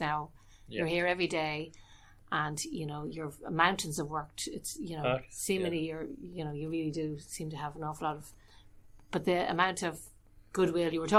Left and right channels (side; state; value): both; identical; correlation 1.00